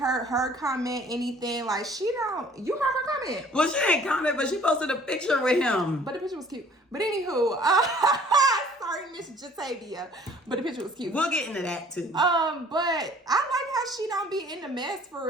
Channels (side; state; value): both; normal; correlation 0.54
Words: her comment anything. Like, you heard her comment. Well, she didn't comment, but she posted a picture with him. But the picture was cute. But anywho, sorry, Miss Jatavia. But the picture was cute. We'll get into that too. But I like how she don't be in the mess for